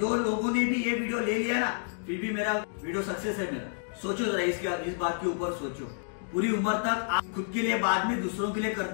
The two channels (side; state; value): right; silent; digital silence